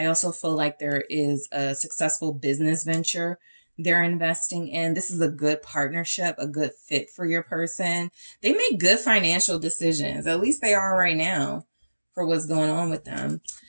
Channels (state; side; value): inverted; both; correlation -1.00